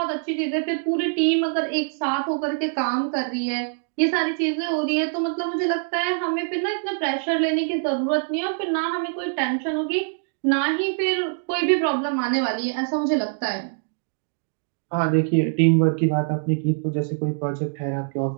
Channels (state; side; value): silent; left; digital silence